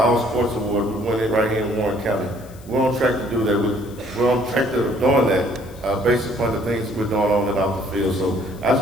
Award. We win it right here in Warren County. We're on track to do that. We're on track to doing that based upon the things we're doing on and off the field. So I just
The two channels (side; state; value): left; noise; hiss, 24 dB below the sound